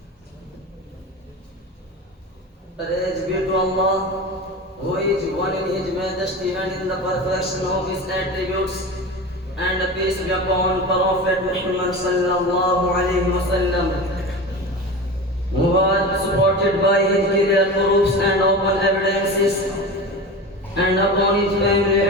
Praise be to Allah, who is one in His majesty and in the perfection of His attributes, and peace be upon Prophet Muhammad sallallahu alaihi wasallam, who was supported by his clear proofs and open evidences, and upon his family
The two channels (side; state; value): both; normal; correlation 0.29